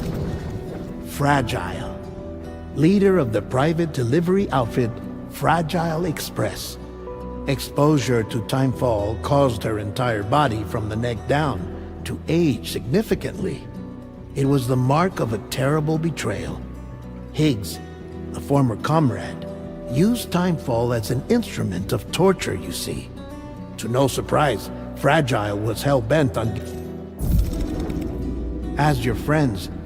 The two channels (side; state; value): both; identical; correlation 1.00